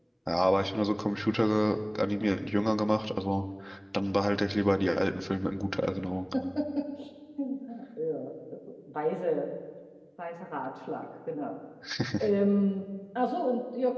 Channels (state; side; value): identical; both; correlation 1.00